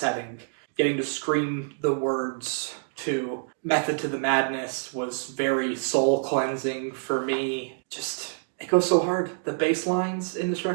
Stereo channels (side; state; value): left; silent; digital silence